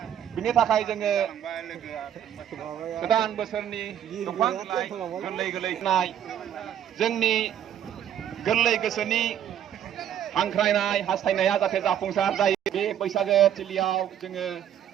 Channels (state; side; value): quieter; left; 10.1 dB